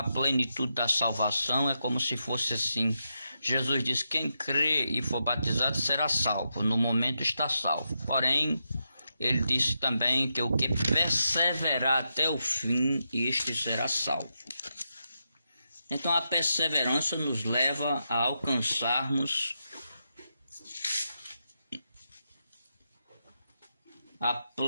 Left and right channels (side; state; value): both; inverted; correlation -0.85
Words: plenitude da salvação é como se fosse assim. Jesus diz: quem crê e for batizado será salvo. No momento está salvo. Porém, ele disse também que o que perseverar até o fim, este será salvo. Então a perseverança nos leva a alcançarmos a